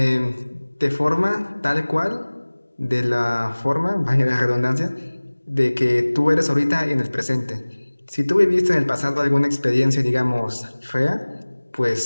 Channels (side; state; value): both; inverted; correlation -1.00